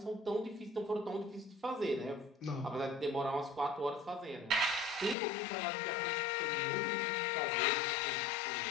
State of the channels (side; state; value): right; drops out; at 5.2 s